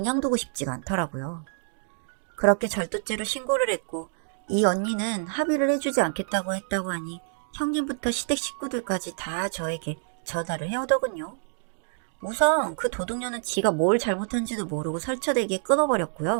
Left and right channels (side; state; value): left; silent; digital silence